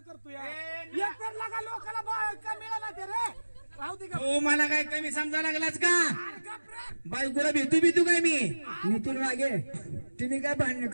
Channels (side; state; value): both; inverted; correlation -1.00